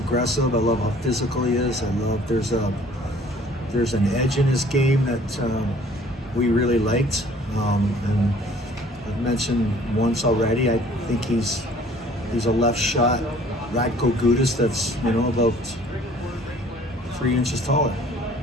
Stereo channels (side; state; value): both; normal; correlation 0.54